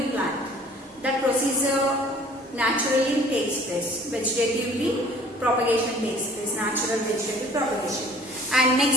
plant. That procedure naturally takes place. Vegetatively propagation takes place, natural vegetative propagation. And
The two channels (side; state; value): both; normal; correlation 0.52